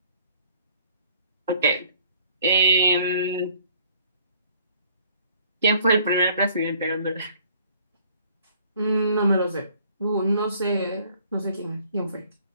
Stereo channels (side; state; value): both; inverted; correlation -0.58